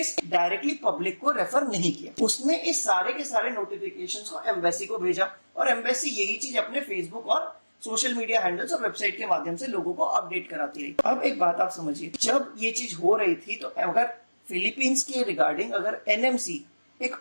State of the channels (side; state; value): both; inverted; correlation -1.00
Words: डायरेक्टली पब्लिक को रेफर नहीं किया। उसने इस सारे के सारे नोटिफिकेशंस को एम्बेसी को भेजा और एम्बेसी यही चीज अपने फेसबुक और सोशल मीडिया हैंडल्स और वेबसाइट के माध्यम से लोगों को अपडेट कराती रही। अब एक बात आप समझिए, जब ये चीज हो रही थी तो अगर फिलीपींस के रिगार्डिंग अगर एनएमसी एक